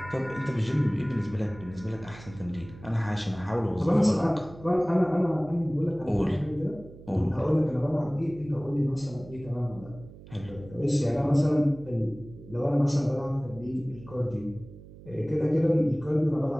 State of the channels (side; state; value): right; noise; hum, 18 dB below the sound